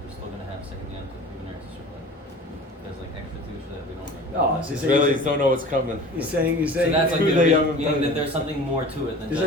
still going to have second Yom Tov even Eretz Yisrael. there's like extra kedusha that we don't make. Oh, so Israelis don't know what's coming. He's saying. So that's like Who they haven't meaning done that it. there's something more to it than There's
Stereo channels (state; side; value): normal; both; correlation 0.40